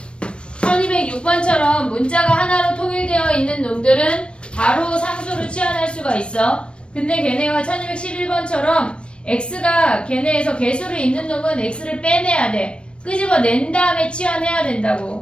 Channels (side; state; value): right; late; 0.057 ms